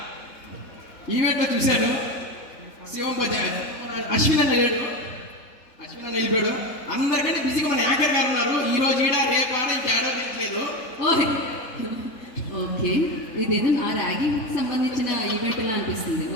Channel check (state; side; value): late; right; 4.1 ms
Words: ఈవెంట్లో చూశాను, శివం అశ్విన్ అన్న లేడు, అశ్విన్ అన్న వెళ్ళిపోయాడు. అందరికంటే బిజీగా మన యాంకర్ గారు ఉన్నారు. ఈ రోజు ఈడ రేపు ఆడ ఇంకేడో లేదు. ఓకే, ఇదేదో నా ర్యాగింగ్ సంబంధించిన ఈవెంట్ లా అనిపిస్తుంది.